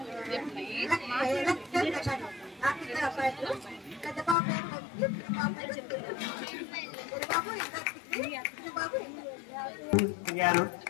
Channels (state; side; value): drops out; right; at 4.4 s